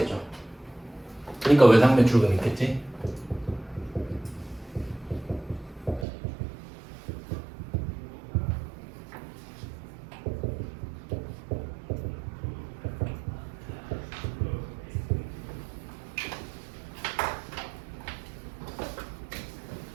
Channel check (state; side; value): drops out; left; at 6.1 s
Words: 그러니까 외상매출금 있겠지?